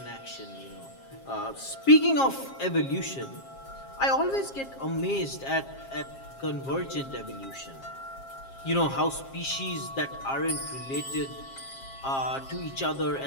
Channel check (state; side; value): late; right; 7.4 ms